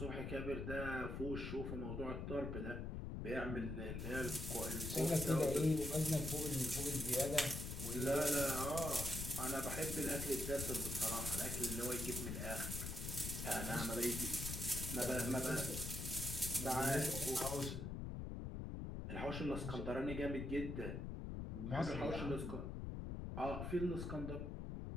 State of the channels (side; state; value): left; noise; rumble, 4 dB below the sound